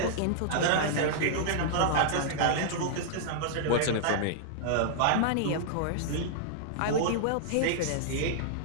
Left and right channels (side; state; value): both; different; correlation -0.01